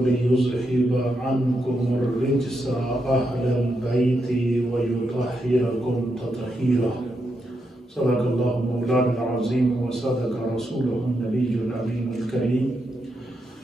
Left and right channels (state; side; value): normal; both; correlation 0.83